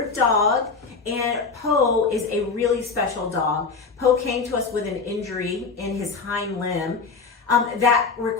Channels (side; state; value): right; quieter; 4.7 dB